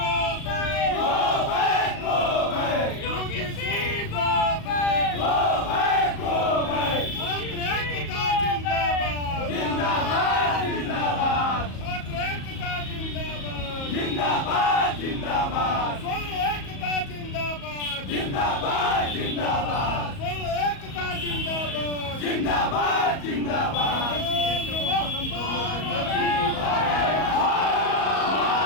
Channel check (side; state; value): right; late; 37 ms